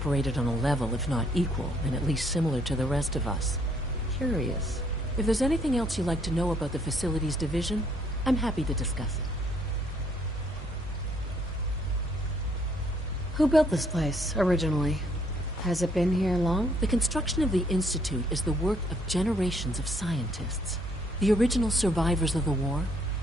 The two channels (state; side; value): normal; both; correlation 0.67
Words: on a level, if not equal, and at least similar to the rest of us. Curious. If there's anything else you'd like to know about the Facilities Division, I'm happy to discuss it. Who built this place, originally? Has it been here long? The construction of the Institute is the work of generations of scientists. The original survivors of the war,